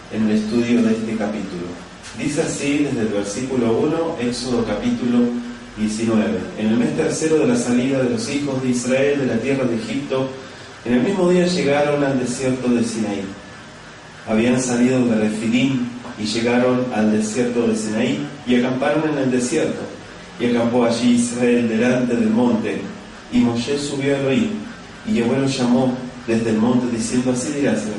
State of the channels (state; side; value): identical; both; correlation 1.00